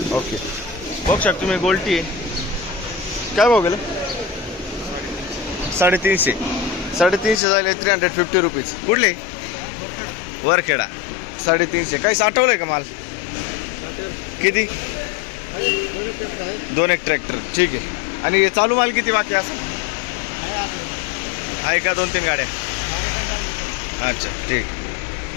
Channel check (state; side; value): drops out; right; at 7.4 s